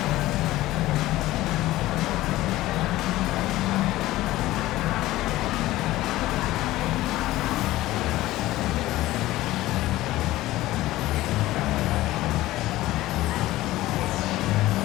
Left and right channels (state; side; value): quieter; right; 16.6 dB